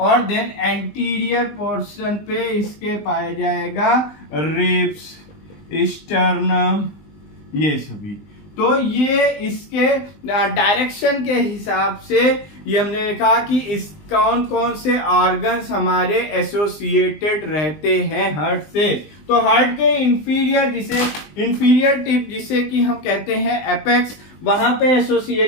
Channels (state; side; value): late; right; 20 ms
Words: देन एंटीरियर पोर्शन पे इसके पाया जाएगा रिब्स, स्टर्नम, ये सभी। तो ये इसके डायरेक्शन के हिसाब से ये हमने देखा कि इस कौन कौन से ऑर्गन्स हमारे एसोसिएटेड रहते हैं हार्ट से। तो हार्ट के इंफीरियर टिप जिसे कि हम कहते हैं एपेक्स, वहां पे